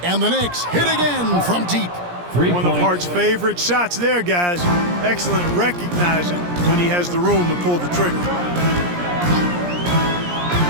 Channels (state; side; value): late; left; 17 ms